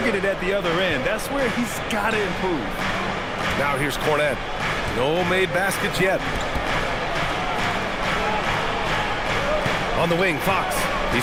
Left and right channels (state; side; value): identical; both; correlation 1.00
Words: at the other end. That's where he's got to improve. Now here's Cornette. No made baskets yet. On the wing, Fox.